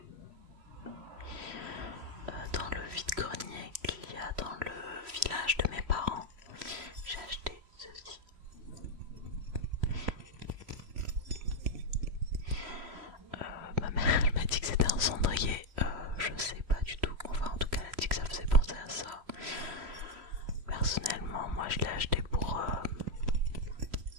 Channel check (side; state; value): left; late; 3.0 ms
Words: dans le vide-grenier qu'il y a dans le village de mes parents, j'ai acheté ceci. Ma mère elle m'a dit que c'était un cendrier, je sais pas du tout, enfin en tout cas elle a dit que ça faisait penser à ça. Personnellement moi je l'ai acheté pour